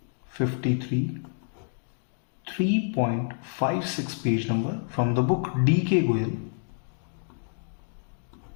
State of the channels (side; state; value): right; silent; digital silence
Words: 53 3.56 page number from the book D.K. Goyal.